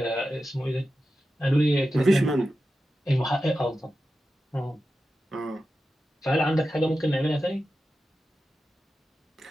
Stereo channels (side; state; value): both; normal; correlation 0.92